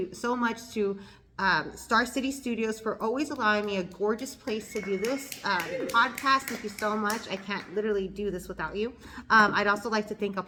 so much to Star City Studios for always allowing me a gorgeous place to do this podcast. Thank you so much. I can't literally do this without you. I'd also like to thank El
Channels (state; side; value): identical; both; correlation 1.00